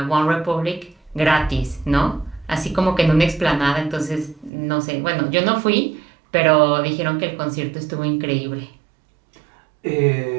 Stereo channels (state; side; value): drops out; left; at 4.5 s